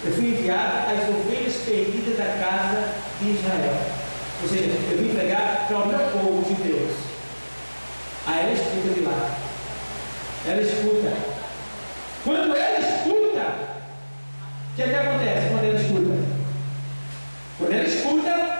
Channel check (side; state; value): both; inverted; correlation -1.00